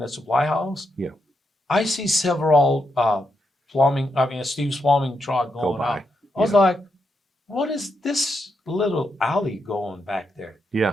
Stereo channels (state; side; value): normal; both; correlation 0.82